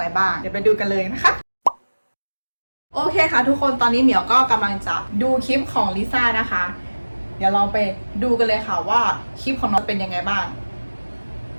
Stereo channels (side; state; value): both; inverted; correlation -1.00